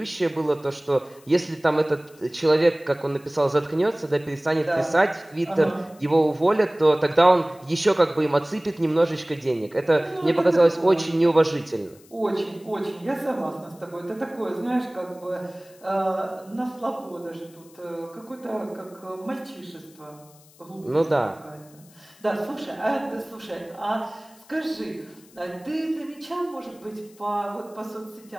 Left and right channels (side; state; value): left; noise; hiss, 26 dB below the sound